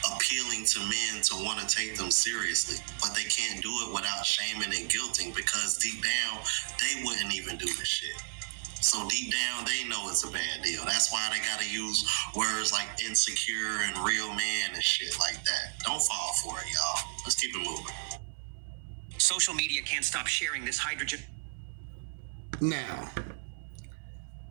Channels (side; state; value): left; silent; 56 dB below the other